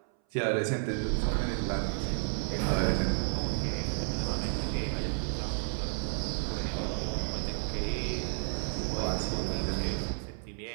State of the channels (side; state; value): left; silent; 57 dB below the other